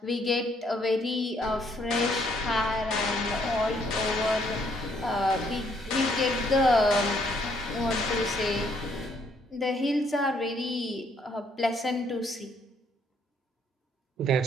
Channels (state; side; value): normal; both; correlation 0.68